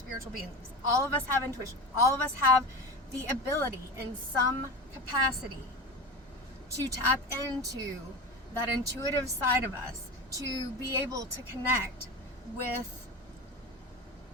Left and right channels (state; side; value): normal; both; correlation 0.27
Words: beings. All of us have intuition. All of us have the ability in some capacity to tap into that intuitive side of us, to be able to connect with